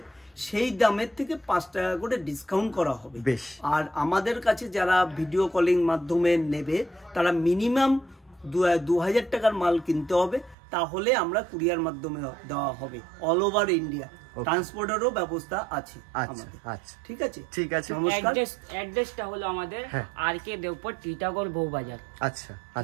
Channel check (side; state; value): left; drops out; at 10.6 s